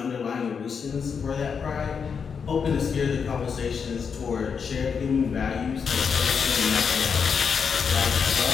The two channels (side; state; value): right; quieter; 6.3 dB